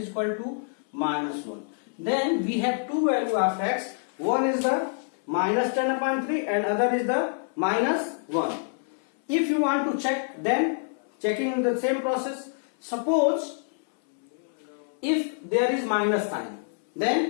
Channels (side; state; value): right; silent; 60 dB below the other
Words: equal to minus 1. Then we have two values of x. One is the minus 10 upon 3 and other is the minus 1. If you want to check, then checking the same process. Suppose if there is minus sign,